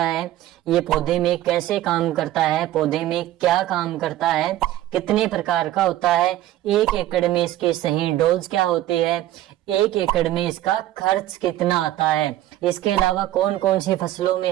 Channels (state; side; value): quieter; left; 14.2 dB